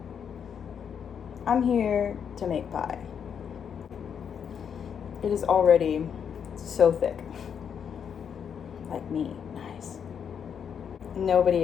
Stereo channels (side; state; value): right; quieter; 7.6 dB